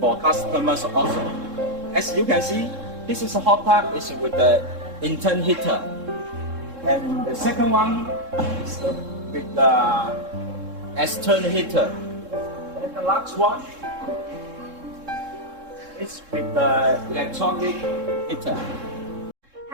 customers also. As you can see, this is a hot tub is with the internal heater. And the second one is with the external heater. And the last one is with the electronic heater.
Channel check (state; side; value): late; left; 3.7 ms